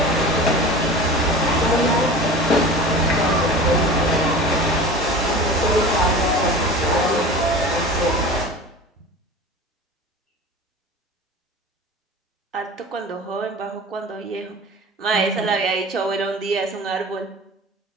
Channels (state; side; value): normal; both; correlation 0.36